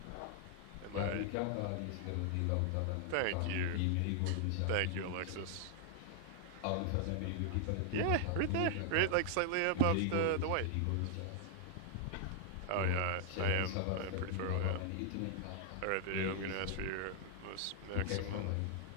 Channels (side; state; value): both; different; correlation 0.00